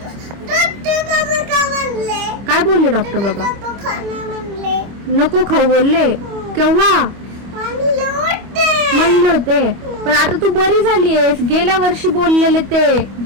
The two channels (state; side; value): late; left; 25 ms